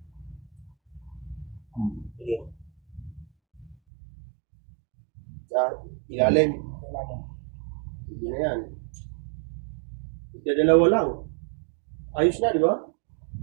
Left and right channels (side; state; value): left; drops out; at 3.8 s